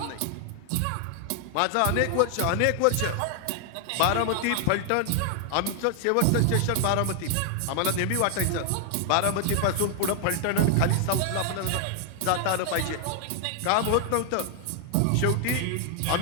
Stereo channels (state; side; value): different; both; correlation 0.00